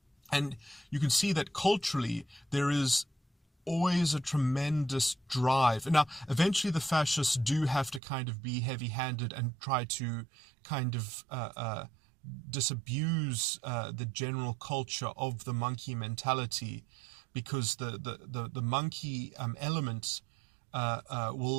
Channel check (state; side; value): drops out; left; at 8.0 s